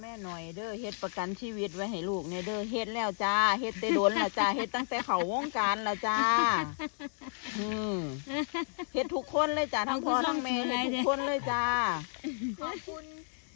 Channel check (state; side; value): silent; right; digital silence